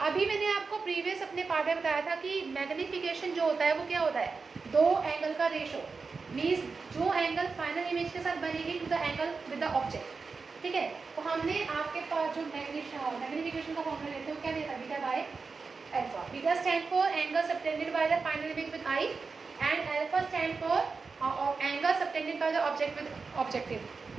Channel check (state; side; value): quieter; left; 4.6 dB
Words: अभी मैंने आपको प्रीवियस अपने पार्ट में बताया था कि मैग्नीफिकेशन जो होता है वो क्या होता है, दो एंगल का रेशो, मीन्स जो एंगल फाइनल इमेज के साथ बनेगी to the angle with the object, ठीक है। तो हमने आपके पास जो मैग्नीफिकेशन का फॉर्मूला लेते हैं क्या देता है, beta by alpha. Beta stand for angle subtended by the final image with I and alpha stand for angle subtended by the object with objective